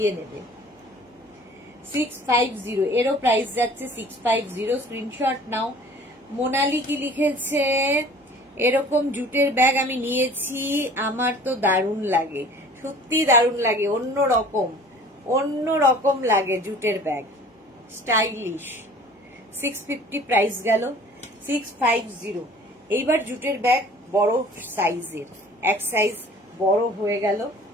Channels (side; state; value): both; normal; correlation 0.48